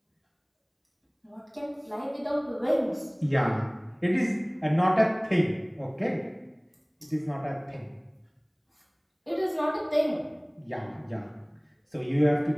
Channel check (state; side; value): identical; both; correlation 1.00